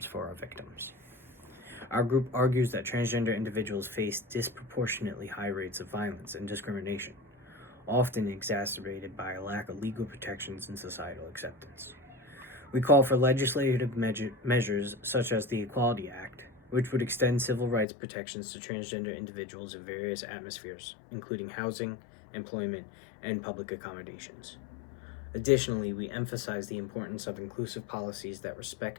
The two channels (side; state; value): right; drops out; at 17.9 s